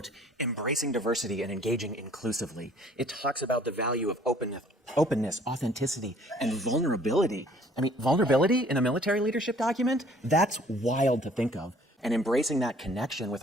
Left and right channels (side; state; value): both; normal; correlation 0.56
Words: embracing diversity and engaging inclusively. It talks about the value of openness, authenticity, and vulnerability. I mean, vulnerability in a military leadership document? That's wild to think of. And embracing that connection with